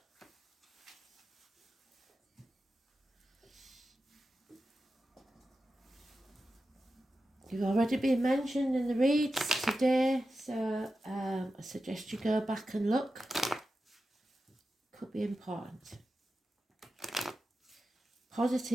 You've already been mentioned in the reads today, so I suggest you go back and look. Could be important.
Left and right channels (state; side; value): normal; both; correlation 0.92